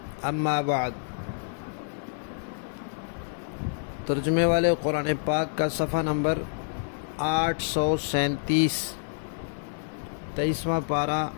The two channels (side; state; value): right; silent; 59 dB below the other